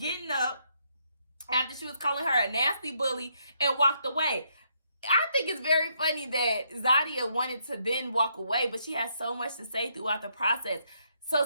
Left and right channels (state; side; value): inverted; both; correlation -0.74